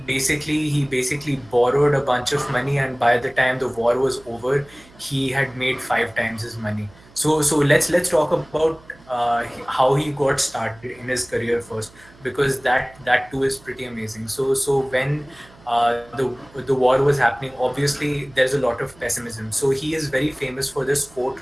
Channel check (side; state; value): right; noise; hum, 25 dB below the sound